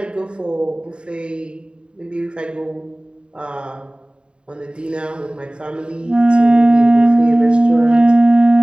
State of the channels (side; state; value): left; late; 0.052 ms